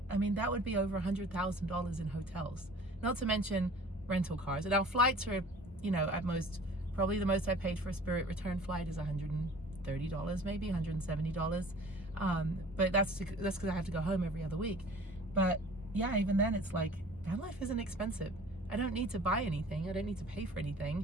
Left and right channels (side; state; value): both; normal; correlation 0.46